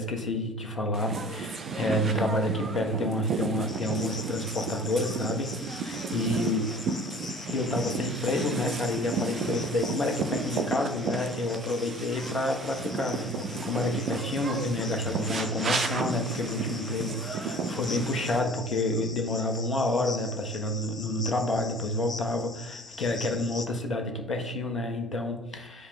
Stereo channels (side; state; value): both; normal; correlation 0.47